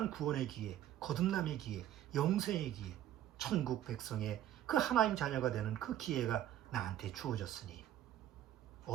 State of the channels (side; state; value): left; quieter; 12.1 dB